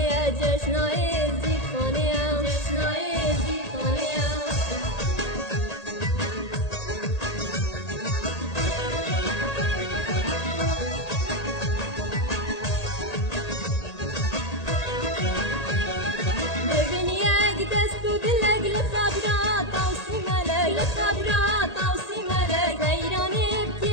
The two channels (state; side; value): late; right; 1.8 ms